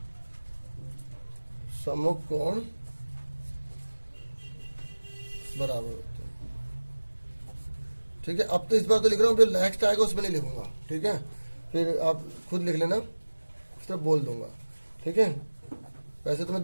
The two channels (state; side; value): inverted; both; correlation -1.00